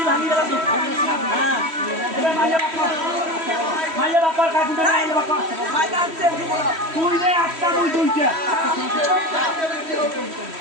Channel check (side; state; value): left; late; 3.1 ms